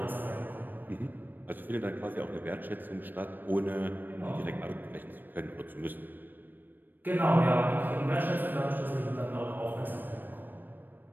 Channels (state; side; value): late; left; 0.092 ms